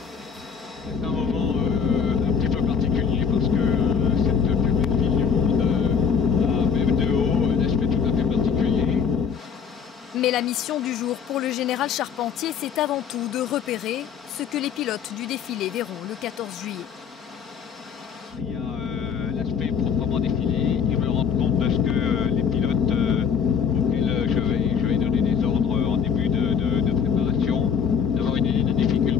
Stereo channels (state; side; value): quieter; right; 6.8 dB